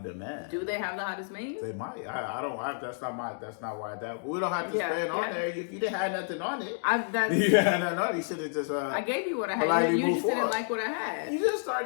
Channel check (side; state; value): right; silent; digital silence